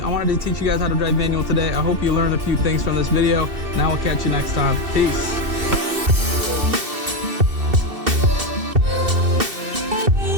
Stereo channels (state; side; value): late; left; 2.7 ms